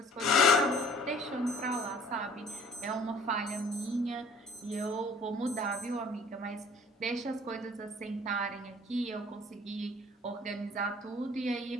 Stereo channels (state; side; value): normal; both; correlation 0.53